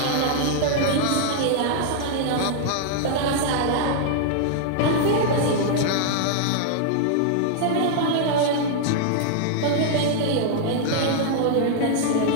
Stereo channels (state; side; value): different; both; correlation 0.00